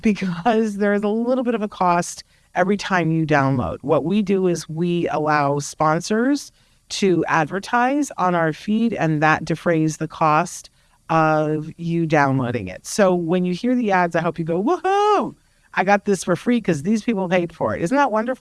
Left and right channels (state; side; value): identical; both; correlation 1.00